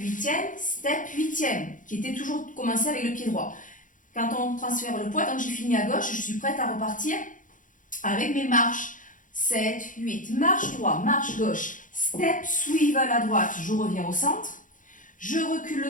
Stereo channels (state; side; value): late; right; 0.38 ms